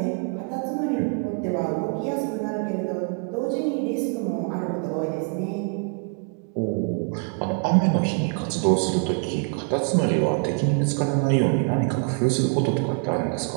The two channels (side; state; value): left; quieter; 37.3 dB